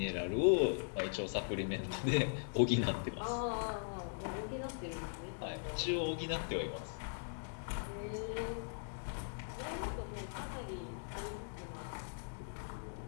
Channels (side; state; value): right; silent; digital silence